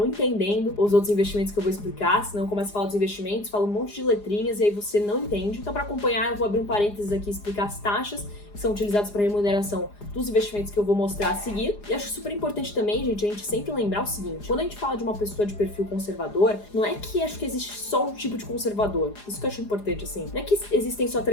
entendendo os outros investimentos que eu vou explicar, senão eu começo a falar dos investimentos, falo um monte de letrinhas e aí você não entende. Então, para acompanhar, eu vou abrir um parênteses aqui e explicar as taxas que são utilizadas para remuneração dos investimentos que eu vou mostrar a seguir. E acho super importante também, gente, a gente sempre lembrar o seguinte: quando a gente fala de uma pessoa de perfil conservador, não é que acho que existe só um tipo de conservador. Isso que eu acho importante, assim. Não é que existem só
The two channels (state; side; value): late; right; 4.9 ms